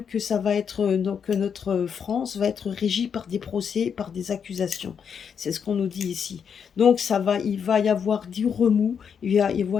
que ça va être, donc que notre France va être régie par des procès, par des accusations. C'est ce qu'on nous dit ici. Donc il va y avoir du remous, il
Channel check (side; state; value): right; quieter; 7.2 dB